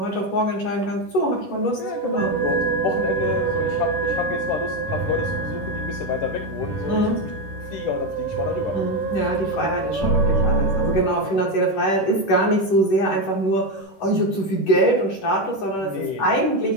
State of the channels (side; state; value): right; late; 11 ms